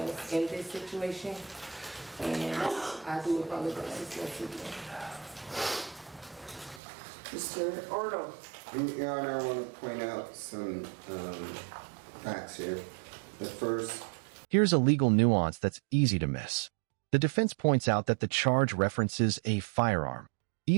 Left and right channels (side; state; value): left; drops out; at 6.8 s